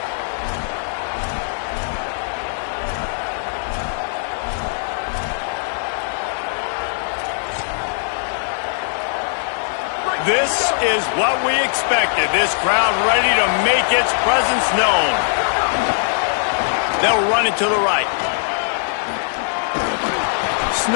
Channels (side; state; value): right; silent; digital silence